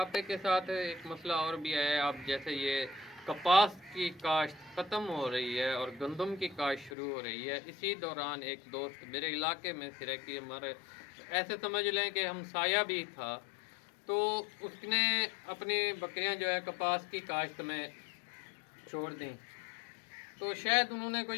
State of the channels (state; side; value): drops out; right; at 6.9 s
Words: के साथ एक मसला और भी है। आप जैसे ये कपास की काश्त ख़त्म हो रही है और गंदम की काश्त शुरू हो रही है, इसी दौरान एक दोस्त मेरे इलाके में सिरे की हमारे ऐसे समझ लें कि हमसाया भी था, तो उसने अपनी बकरियां जो है कपास की काश्त में छोड़ दी। तो शायद उन्होंने